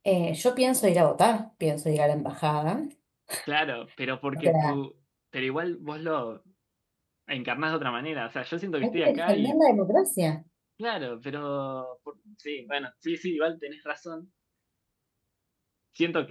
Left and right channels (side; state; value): both; identical; correlation 1.00